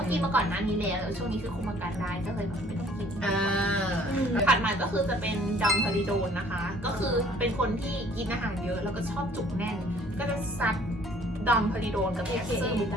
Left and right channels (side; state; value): both; normal; correlation 0.57